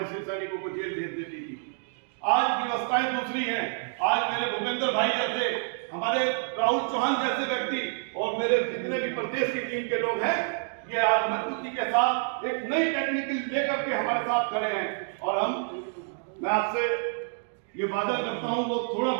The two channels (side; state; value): left; silent; 59 dB below the other